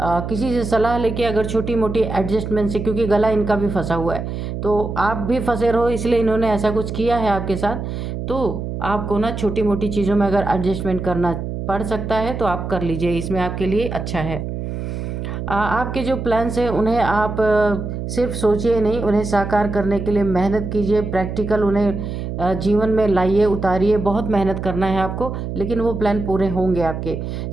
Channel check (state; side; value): noise; right; hum, 5 dB below the sound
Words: से सलाह लेके, अगर छोटी मोटी एडजस्टमेंट से, क्योंकि गला इनका भी फंसा हुआ है, तो आप भी फंसे रहो, इसलिए इन्होंने ऐसा कुछ किया है आपके साथ। तो आपको ना छोटी मोटी चीज़ों में अगर एडजस्टमेंट करना पड़ सकता है तो आप कर लीजिए, इसमें आपके लिए अच्छा है। आपके जो प्लान्स हैं उन्हें आप सिर्फ सोचिए नहीं, उन्हें साकार करने के लिए मेहनत कीजिए, प्रैक्टिकल उन्हें जीवन में लाइए, उतारिए। बहुत मेहनत करना है आपको, लेकिन वो प्लान पूरे होंगे आपके।